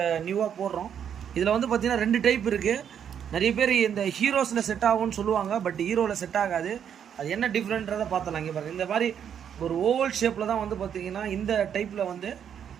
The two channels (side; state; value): left; quieter; 8.5 dB